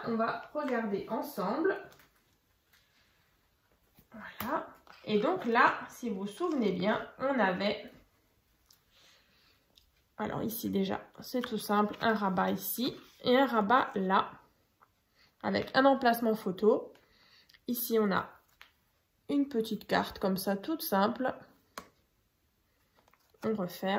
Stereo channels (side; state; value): both; identical; correlation 1.00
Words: on va regarder ensemble. Voilà. Et donc là, si vous vous souvenez bien, on avait... Alors ici déjà, c'est tout simple. Un rabat ici et un rabat là. Avec un emplacement photo. Ici, on a une petite carte comme ça, toute simple. On